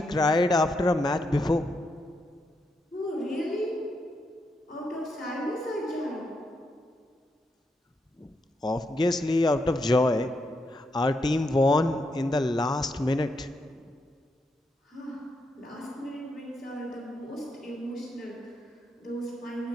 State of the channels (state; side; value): normal; both; correlation 0.81